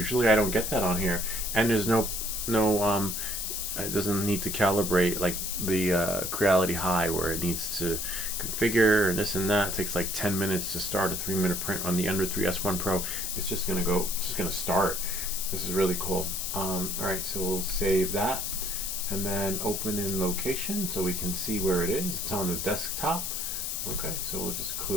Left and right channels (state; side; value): noise; left; hiss, 3 dB below the sound